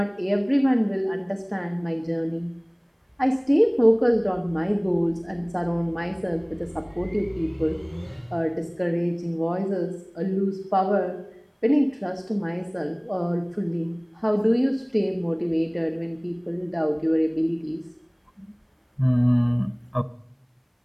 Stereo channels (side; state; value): both; identical; correlation 1.00